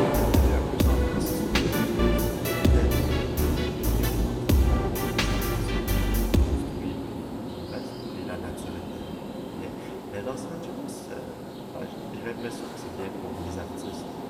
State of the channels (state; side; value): identical; both; correlation 1.00